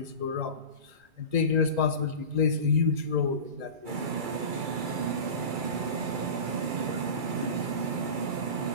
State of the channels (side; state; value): left; late; 2.3 ms